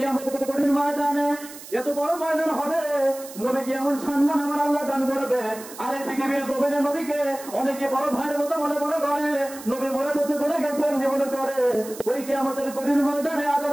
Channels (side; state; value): right; noise; hiss, 15 dB below the sound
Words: কঠিন ময়দানে এত বড় ময়দান হবে, নবীকে এমন সম্মান আমার আল্লাহ দান করবে। আর এই পৃথিবীর জমিনে নবীকে অনেকে বড় ভাইয়ের মতো মনে মনে করে, নবী মনে বসে বলে গেছেন মনে করে। ওই কিয়ামতের কঠিন ময়দানে